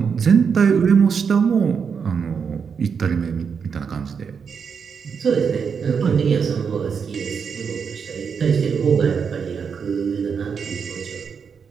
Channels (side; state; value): left; quieter; 6.3 dB